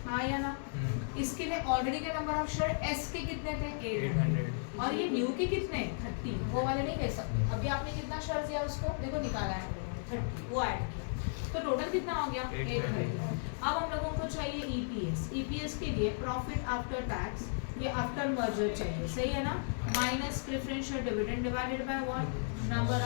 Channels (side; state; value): right; silent; 55 dB below the other